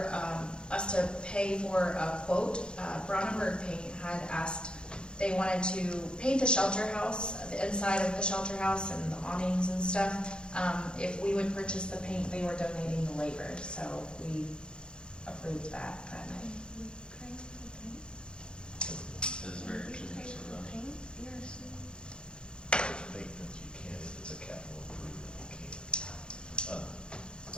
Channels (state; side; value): late; right; 0.051 ms